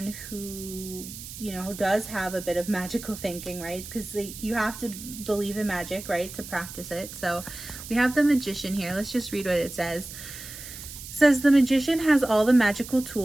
who, you know, does have a bit of magical thinking, right? Because you have to believe in magic, right, to practice it. So we have the Magician here. Let's just read what it says. It says, the Magician has all the magical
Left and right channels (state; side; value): noise; right; hiss, 12 dB below the sound